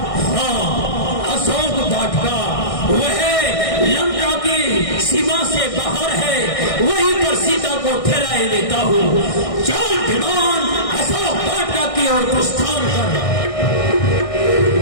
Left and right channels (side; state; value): right; late; 1.6 ms